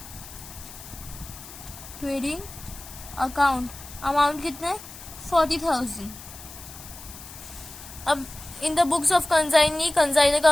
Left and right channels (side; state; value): left; noise; hiss, 15 dB below the sound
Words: अकाउंट, अमाउंट कितना है 40,000। अब in the books of consignor